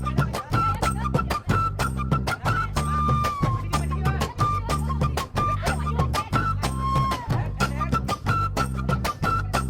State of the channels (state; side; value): identical; both; correlation 1.00